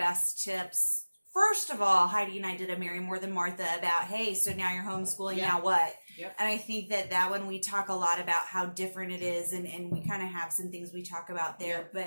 tips, first of all, Heidi and I did a Mary More Than Martha about, hey, so now you're homeschooling, now what? Yep. And I think that one we talk a lot about how different it is, and we kind of have some things we talk about there.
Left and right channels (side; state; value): both; inverted; correlation -1.00